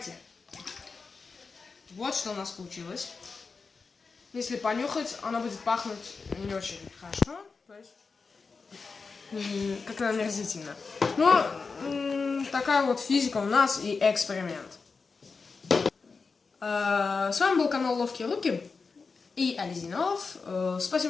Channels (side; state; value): right; quieter; 4.7 dB